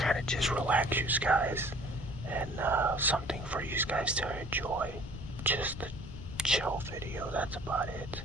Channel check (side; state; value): left; noise; rumble, 11 dB below the sound